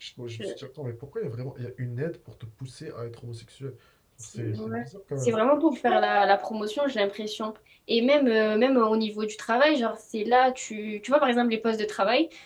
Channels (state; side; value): identical; both; correlation 1.00